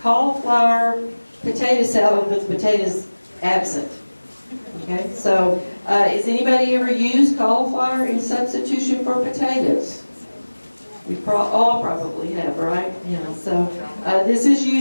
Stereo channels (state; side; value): inverted; both; correlation -1.00